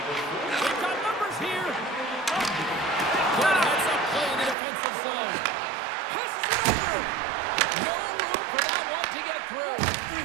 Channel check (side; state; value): left; drops out; at 4.5 s